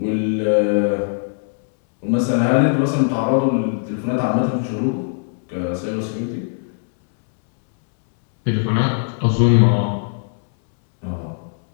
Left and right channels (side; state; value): right; silent; 64 dB below the other